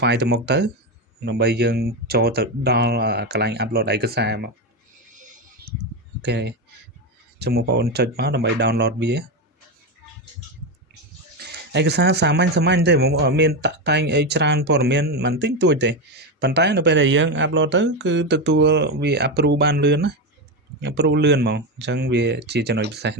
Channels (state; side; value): normal; both; correlation 0.13